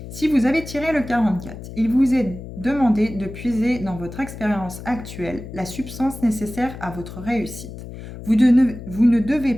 Si vous avez tiré le 44, il vous est demandé de puiser dans votre expérience actuelle la substance nécessaire à votre réussite. Vous ne devez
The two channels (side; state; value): left; noise; hum, 12 dB below the sound